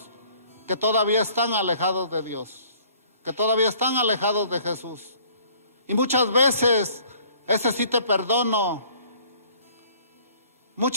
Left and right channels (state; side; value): inverted; both; correlation -0.56